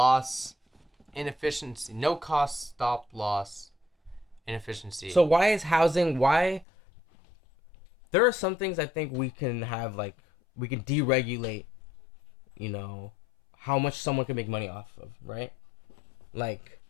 inefficiency. No cost stop loss inefficiency. So why is housing? Why? There are some things I think we can have, like we can deregulate. You know, how much someone can make money off of, right? Like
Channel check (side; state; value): right; drops out; at 6.7 s